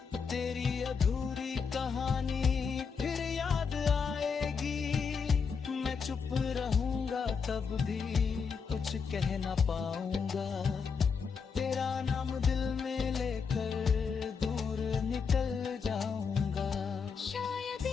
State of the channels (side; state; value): right; quieter; 5.8 dB